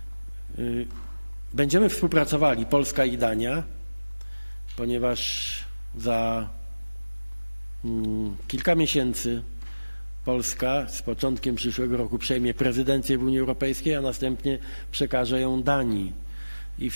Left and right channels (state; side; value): inverted; both; correlation -1.00